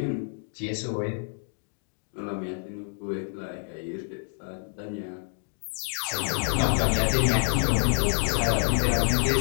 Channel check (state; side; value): silent; right; digital silence